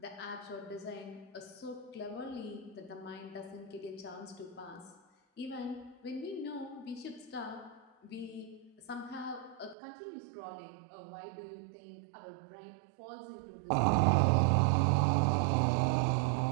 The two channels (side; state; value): left; drops out; at 9.8 s